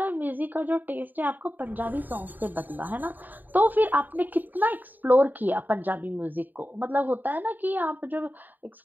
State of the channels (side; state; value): left; late; 0.088 ms